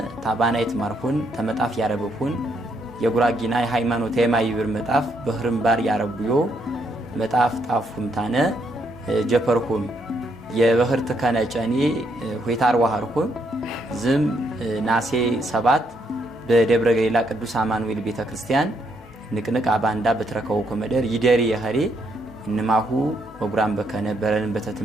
ታባናይት ማርኩን ተመጣፍ ያረበኩን የጉራጊና የሃይማኖት የማይብር መጣፍ በህርምባር ያረቡዮ መጣፍ ጣፉምታነ ጀፐርኩም የበህርት ከነጨኒ ሆይታር ዋሃርኩም ዝም ናሴ 7 በደብረ ገሊላ ቅዱስ አማኑኤል ቤተክርስቲያን ንቅንቅ አባንዳ በትረከው ኮመደር ይደሪ የኸሪ እንማሁ ወጉራም በከነ በረን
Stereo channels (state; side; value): normal; both; correlation 0.74